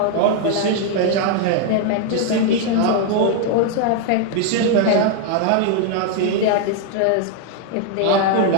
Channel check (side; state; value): both; different; correlation 0.00